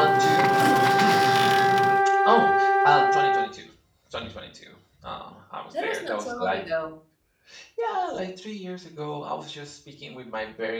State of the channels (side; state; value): both; identical; correlation 1.00